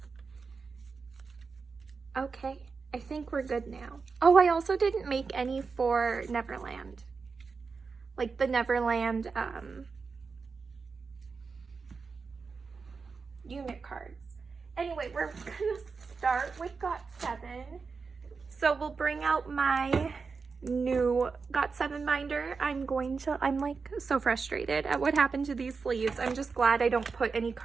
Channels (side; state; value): left; quieter; 4.9 dB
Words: Okay, I think we're good now. Oh, I also didn't make any for Neverland. Like the Neverland unit cards. Anyway, we're gonna start with Got7. So we'll bring out my new Got7 binder. I'm like so frustrated at what happened to these sleeves. I'm just glad I don't put any